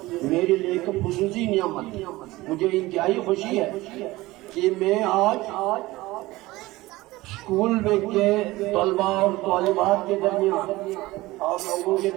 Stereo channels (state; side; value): quieter; left; 19.2 dB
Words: میرے لیے ایک خصوصی نعمت، مجھے انتہائی خوشی ہے کہ میں آج اسکول میں کے طلباء اور طالبات کے درمیان آپ لوگوں کے